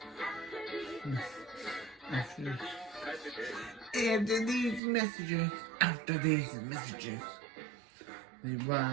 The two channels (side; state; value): left; drops out; at 4.8 s